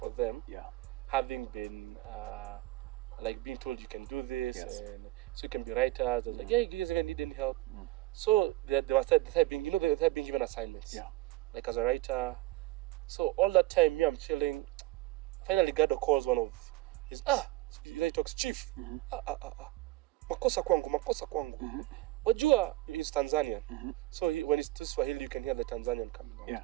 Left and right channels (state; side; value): quieter; left; 18.4 dB